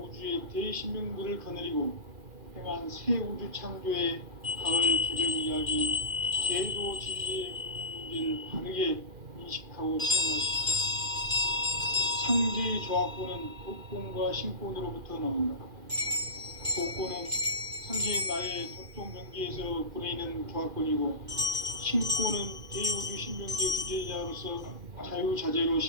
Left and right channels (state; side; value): late; left; 2.4 ms